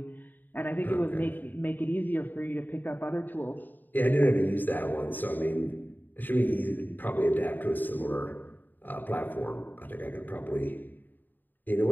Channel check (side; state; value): right; late; 0.089 ms